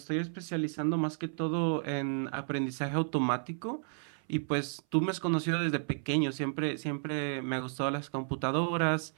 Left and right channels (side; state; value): left; silent; 56 dB below the other